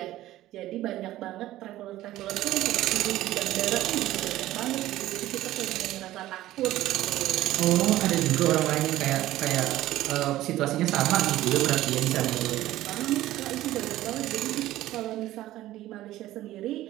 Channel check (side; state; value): left; quieter; 15.1 dB